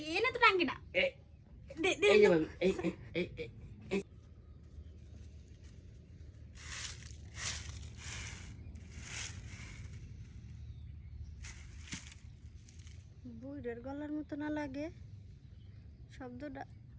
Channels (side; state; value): both; identical; correlation 1.00